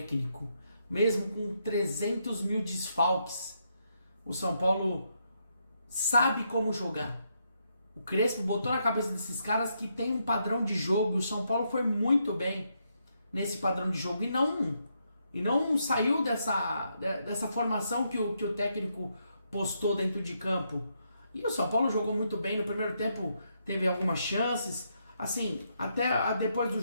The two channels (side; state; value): both; inverted; correlation -0.78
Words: Mesmo com 300 mil desfalques, o São Paulo sabe como jogar. O Crespo botou na cabeça desses caras que tem um padrão de jogo. O São Paulo foi muito bem nesse padrão de jogo e não saiu dessa formação que o técnico postou dentro de campo. E o São Paulo jogou muito bem. No primeiro tempo teve algumas chances. Assim, até depois do